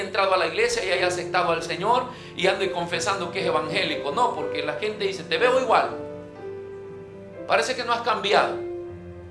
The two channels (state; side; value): identical; both; correlation 1.00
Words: entrado a la iglesia y haya aceptado al Señor y ande confesando que es evangélico. No, porque la gente dice: te veo igual, parece que no has cambiado.